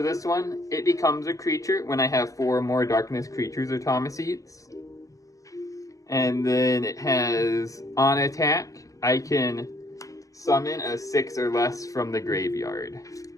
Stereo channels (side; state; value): right; late; 0.16 ms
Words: this one, it becomes a creature when I have 4 or more darkness creatures or Thaumacetes. And then it has, on attack, I can summon a 6 or less from the graveyard.